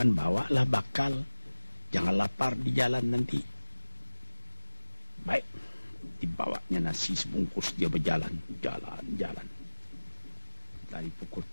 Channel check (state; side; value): inverted; both; correlation -1.00